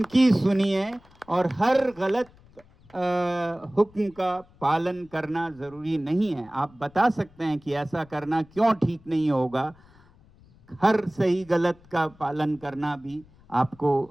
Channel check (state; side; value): noise; left; rumble, 27 dB below the sound